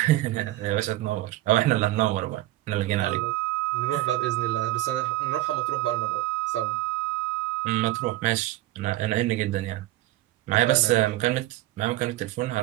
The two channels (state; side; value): quieter; left; 16.1 dB